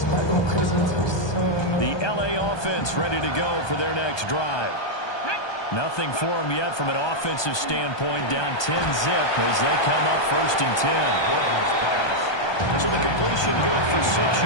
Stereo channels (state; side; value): late; right; 1.2 ms